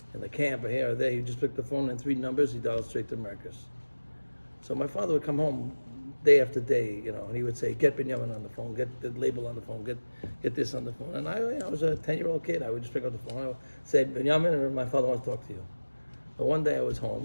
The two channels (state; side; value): inverted; both; correlation -1.00